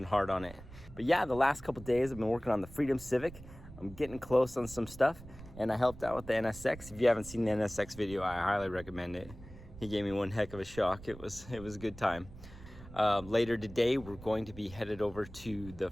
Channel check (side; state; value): right; noise; rumble, 17 dB below the sound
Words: hard on it. But yeah, the last couple days I've been working on the Freedom Civic. I'm getting close on some stuff, and I helped out with the NSX. If you haven't seen the NSX video, I highly recommend it. He gave me one heck of a shock. It was a good time. Later today, we're going to be headed over to the